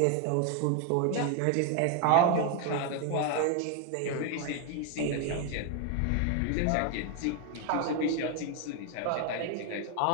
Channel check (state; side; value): different; both; correlation 0.01